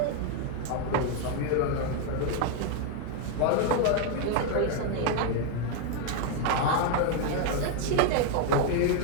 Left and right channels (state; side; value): different; both; correlation 0.01